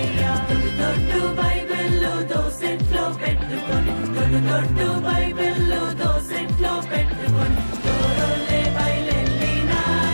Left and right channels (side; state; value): both; inverted; correlation -1.00